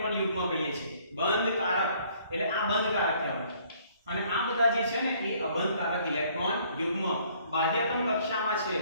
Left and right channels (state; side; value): inverted; both; correlation -0.61